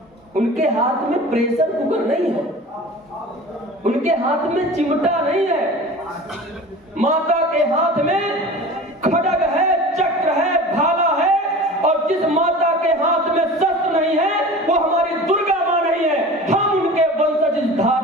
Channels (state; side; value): normal; both; correlation 0.38